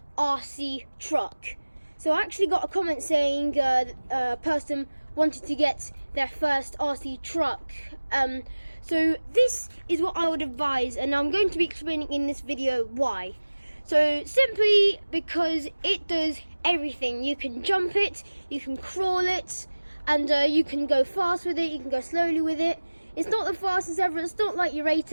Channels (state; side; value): inverted; both; correlation -1.00